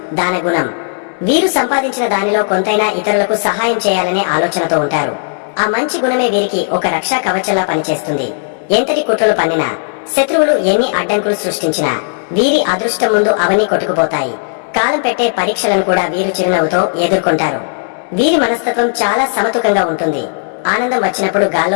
దానగుణం. వీరు సంపాదించిన దానిలో కొంతైనా ఇతరులకు సహాయం చేయాలనే ఆలోచనతో ఉంటారు. ఆ మంచి గుణమే వీరికి ఒక రక్షా కవచంలా పనిచేస్తుంది. ఎంతటి కుట్రలు పన్నినా, శత్రువులు ఎన్ని అడ్డంకులు సృష్టించినా వీరి అదృష్టం ముందు అవన్నీ కొట్టుకుపోతాయి. కాలం పెట్టే పరీక్షలను కూడా వీరు చిరునవ్వుతో ఎదుర్కొంటారు. వీరి మనస్తత్వం చాలా సమతుకంగా ఉంటుంది. ఆనందం వచ్చినప్పుడు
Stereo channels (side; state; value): right; silent; digital silence